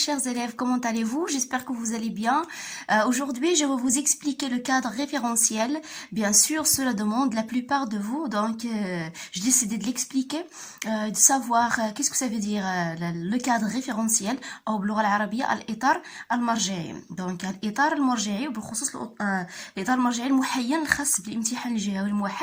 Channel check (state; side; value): identical; both; correlation 1.00